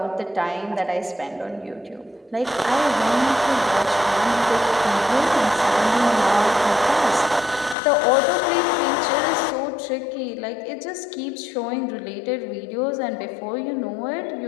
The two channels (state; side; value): drops out; right; at 7.8 s